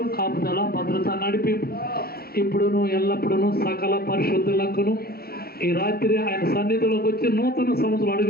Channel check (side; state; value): right; late; 0.44 ms